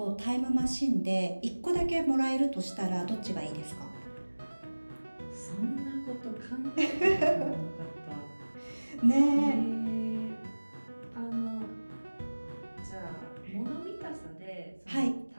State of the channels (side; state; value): both; inverted; correlation -1.00